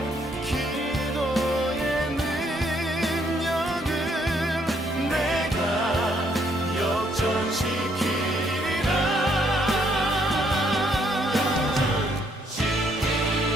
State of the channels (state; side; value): normal; both; correlation 0.70